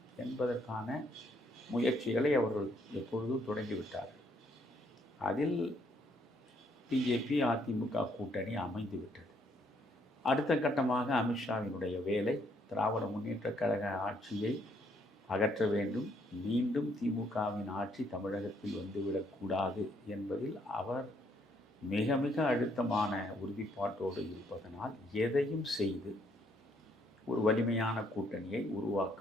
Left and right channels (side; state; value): both; normal; correlation 0.69